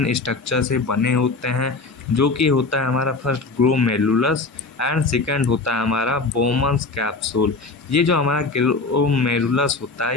स्ट्रक्चर से बने होते हैं जो कि होता है हमारा फर्स्ट ग्लोमेरुलस एंड सेकंड होता है हमारा बोमन्स कैप्सूल। ये जो हमारा ग्लोमेरुलस होता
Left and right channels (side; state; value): right; quieter; 3.8 dB